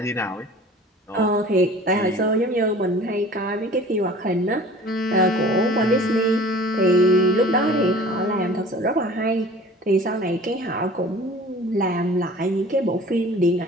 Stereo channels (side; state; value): both; normal; correlation 0.45